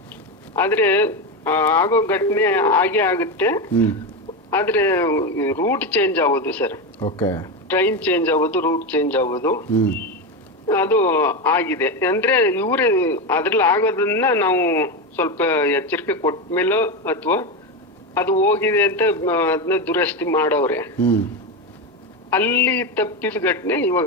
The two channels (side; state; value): both; normal; correlation 0.14